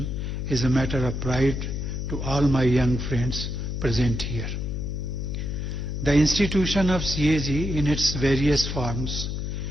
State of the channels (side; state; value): left; noise; hum, 3 dB below the sound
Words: is a matter of pride to all my young friends present here. The institution of CAG in its various forms